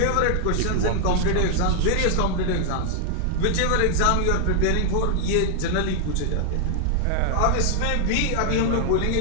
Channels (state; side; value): different; both; correlation 0.00